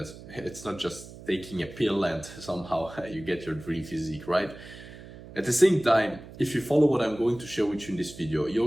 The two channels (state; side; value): noise; right; hum, 16 dB below the sound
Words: it's not just taking a pill and somehow you get your dream physique, right? At the same time, if you follow what I'm going to share with you in this video,